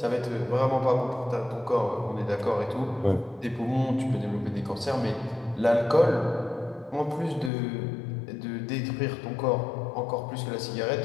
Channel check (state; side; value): drops out; right; at 7.5 s